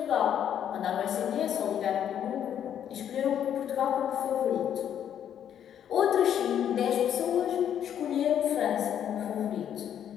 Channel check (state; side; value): quieter; right; 9.6 dB